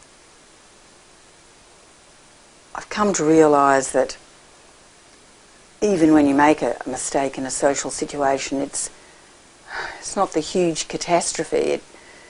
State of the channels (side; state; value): both; identical; correlation 1.00